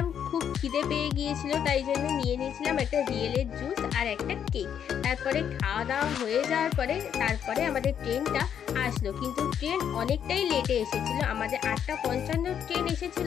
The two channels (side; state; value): right; quieter; 8.7 dB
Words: খুব খিদে পেয়ে গিয়েছিল, তাই জন্য নিয়ে নিয়েছিলাম একটা রিয়েলের জুস আর একটা কেক। তারপরে খাওয়া দাওয়া হয়ে যাওয়ার পরে তারপরে আমাদের ট্রেনটা আসলো, কিন্তু ট্রেন অনেকটাই লেটে এসেছিল। আমাদের 8:55 ট্রেন